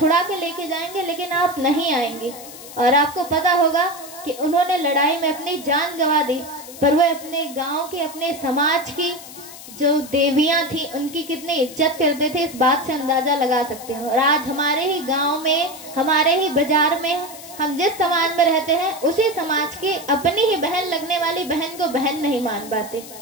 के लेके जाएंगे, लेकिन आप नहीं आएंगे। और आपको पता होगा कि उन्होंने लड़ाई में अपनी जान गंवा दी, पर वो अपने गांव के, अपने समाज की जो देवियां थी उनकी कितनी इज्जत करते थे, इस बात से अंदाजा लगा सकते हैं। और आज हमारे ही गांव में, हमारे ही बाजार में, हम जिस समाज में रहते हैं उसी समाज की अपनी ही बहन लगने वाली बहन को बहन नहीं मान पाते।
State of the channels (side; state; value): left; noise; hiss, 15 dB below the sound